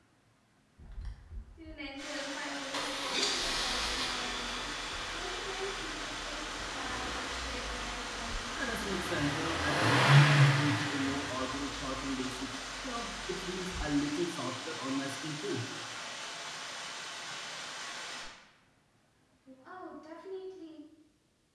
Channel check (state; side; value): identical; both; correlation 1.00